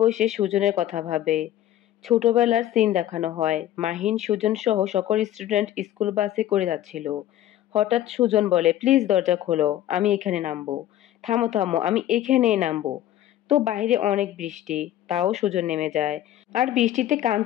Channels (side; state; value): right; quieter; 12.7 dB